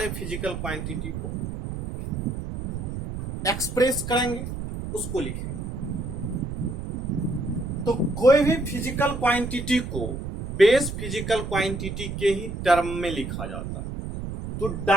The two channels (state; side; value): noise; right; rumble, 6 dB below the sound